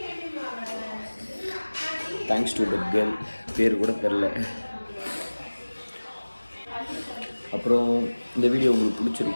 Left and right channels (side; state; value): both; inverted; correlation -1.00